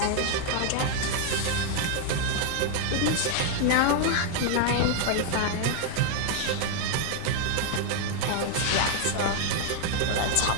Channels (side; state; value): both; different; correlation 0.00